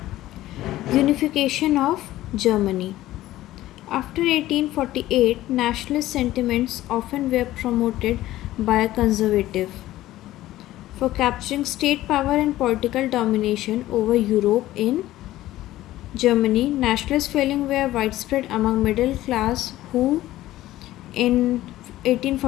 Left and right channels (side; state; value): right; quieter; 15.3 dB